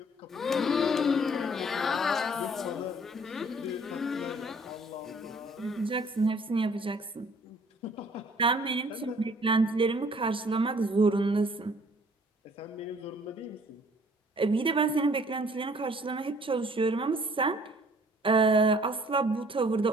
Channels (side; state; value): both; normal; correlation 0.57